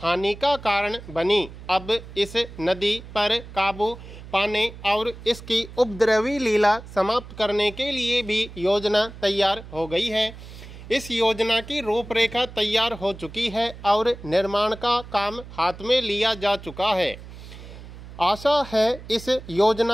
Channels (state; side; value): noise; right; hum, 15 dB below the sound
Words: हानि का कारण बनी। अब इस नदी पर काबू पाने और इसकी उपद्रवी लीला समाप्त करने के लिए भी योजना तैयार हो गई है। इस योजना की रूपरेखा तैयार हो चुकी है और निर्माण का काम हाथ में लिया जा चुका है। आशा है इस